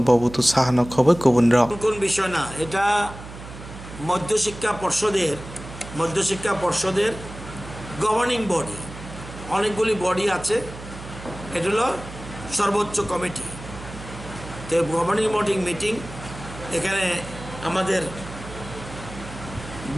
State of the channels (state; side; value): noise; right; hum, 13 dB below the sound